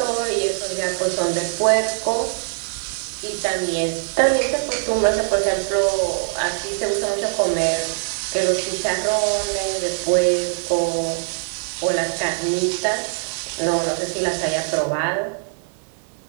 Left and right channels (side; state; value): left; silent; digital silence